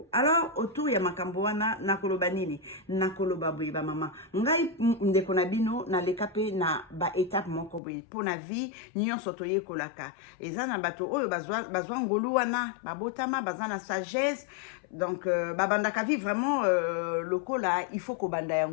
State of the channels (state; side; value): drops out; right; at 7.8 s